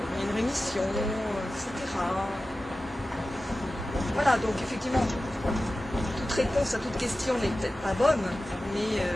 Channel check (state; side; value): normal; both; correlation 0.95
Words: il y a une rémission, etc. Voilà, donc effectivement, toute réponse à toute question n'est peut-être pas bonne, mais